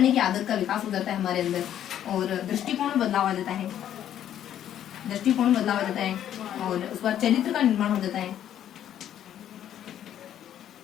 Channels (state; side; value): quieter; right; 10.7 dB